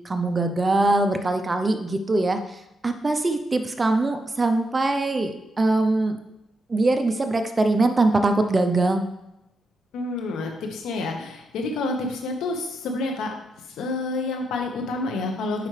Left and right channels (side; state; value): both; normal; correlation 0.83